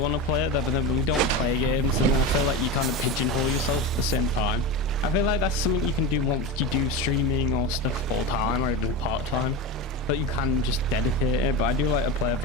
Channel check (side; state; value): both; normal; correlation 0.22